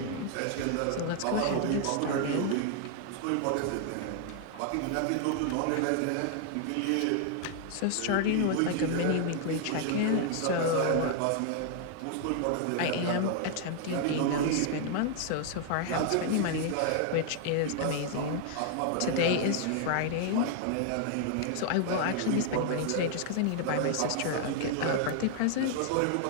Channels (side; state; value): both; different; correlation 0.00